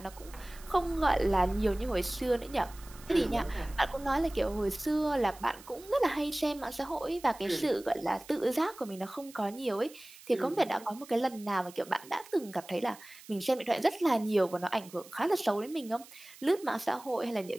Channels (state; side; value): noise; right; hiss, 20 dB below the sound